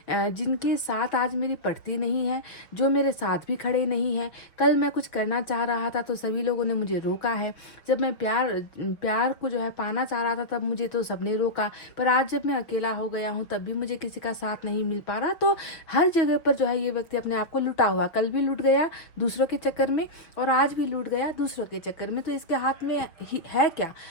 जिनके साथ आज मेरी पड़ती नहीं है, जो मेरे साथ भी खड़े नहीं है। कल मैं कुछ करना चाह रहा था तो सभी लोगों ने मुझे रोका है, जब मैं प्यार को जो है पाना चाह रहा था तब मुझे तो सबने रोका, पर आज जब मैं अकेला हो गया हूँ तब भी मुझे किसी का साथ नहीं मिल पा रहा। तो हर जगह पर जो है ये व्यक्ति अपने आप को लुटा हुआ, कल भी लूट गया दूसरों के चक्कर में, और आज भी लूट गया दूसरों के चक्कर में। तो इसके हाथ में है क्या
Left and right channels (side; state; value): right; late; 5.4 ms